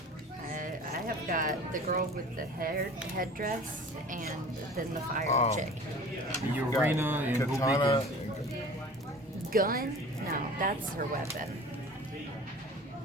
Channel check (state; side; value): normal; both; correlation 0.41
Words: I have got the girl with the headdress and then the fire chick. Urena and Katana. Himika. Gun? No, that's her weapon.